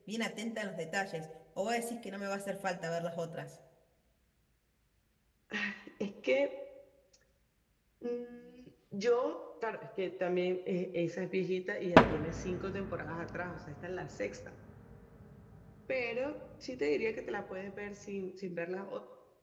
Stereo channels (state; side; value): identical; both; correlation 1.00